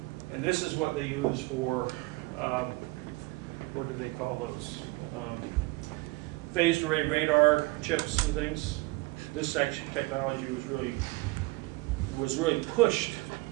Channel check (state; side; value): quieter; left; 23.4 dB